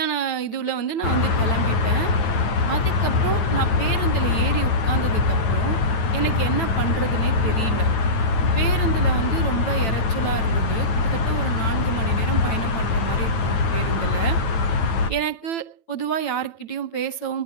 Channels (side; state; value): right; late; 9.0 ms